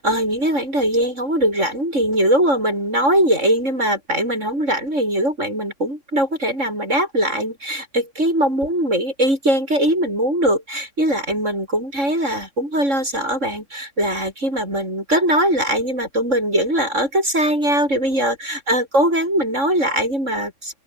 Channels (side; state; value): left; late; 3.6 ms